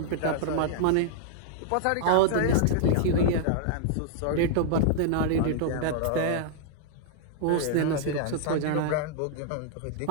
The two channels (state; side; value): different; both; correlation -0.01